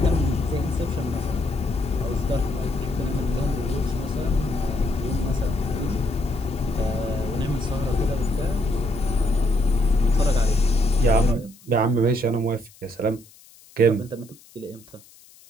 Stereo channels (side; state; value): left; noise; hiss, 25 dB below the sound